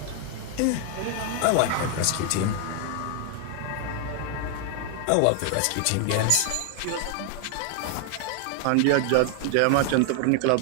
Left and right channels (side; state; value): both; different; correlation 0.00